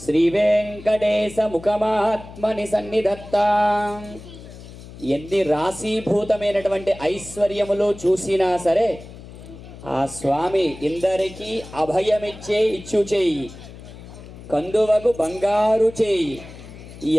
శ్రీ వెంకటేశ ముఖమాత్మని సన్నిధత్తాం. ఎన్ని రాశీభూతమైనటువంటి ఐశ్వర్యములు చూసినా సరే ఆ స్వామి ఇందరికీ అభయమిచ్చే ఇచ్చు చేయి, కందువకు బంగారు చేయి.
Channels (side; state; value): left; noise; hum, 16 dB below the sound